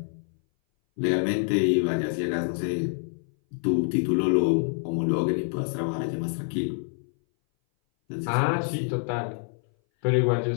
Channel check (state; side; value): silent; right; 59 dB below the other